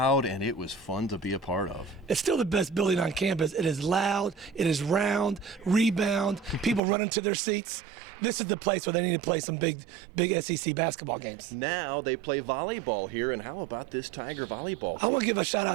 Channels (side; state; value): left; drops out; at 6.8 s